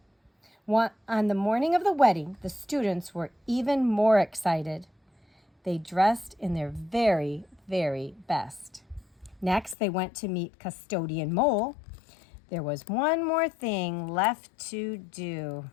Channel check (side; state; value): right; drops out; at 9.8 s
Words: On the morning of the wedding, the students were even more excited. They dressed in their very, very best. Next, they went to meet Custodian Mole. There was one more thing left to do.